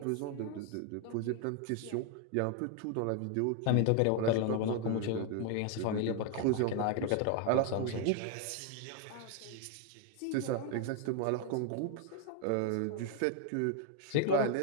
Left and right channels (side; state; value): both; different; correlation 0.00